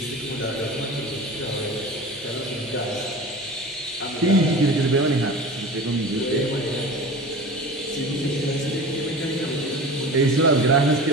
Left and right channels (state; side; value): normal; both; correlation 0.34